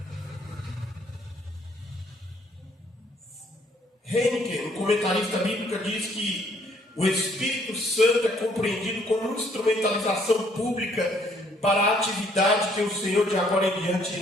Heineken, um comentarista bíblico, diz que o Espírito Santo é compreendido como instrumentalização pública para a atividade que o Senhor de agora em diante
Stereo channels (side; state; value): both; normal; correlation 0.65